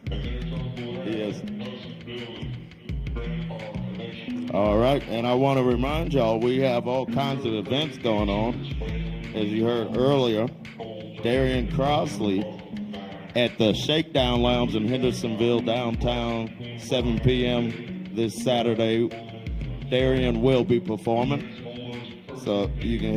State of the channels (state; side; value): identical; both; correlation 1.00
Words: Yes. All right, and I want to remind y'all we have all kinds of events going on. As you heard earlier, Darian Crossley at the Shakedown Lounge in Hendersonville, downtown, 7 p.m. this Saturday. Darian will be performing, so you can